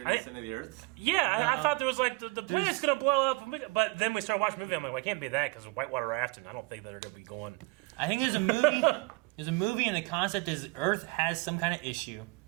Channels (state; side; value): quieter; left; 25.8 dB